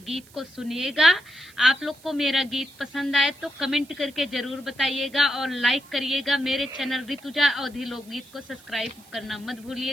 गीत को सुनिएगा। आप लोग को मेरा गीत पसंद आए तो कमेंट करके जरूर बताइएगा और लाइक करिएगा। मेरे चैनल ऋतुजा अवधी लोकगीत को सब्सक्राइब करना मत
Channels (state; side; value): noise; right; hiss, 25 dB below the sound